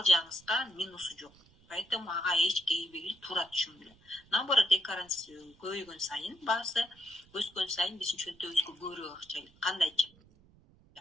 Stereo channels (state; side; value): noise; right; rumble, 28 dB below the sound